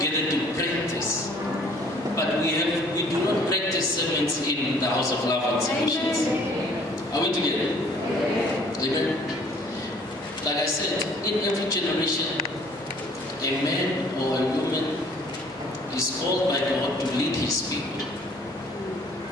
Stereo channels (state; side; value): normal; both; correlation 0.56